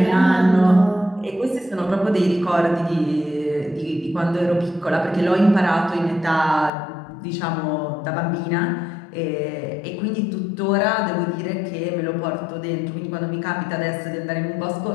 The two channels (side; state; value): right; drops out; at 6.7 s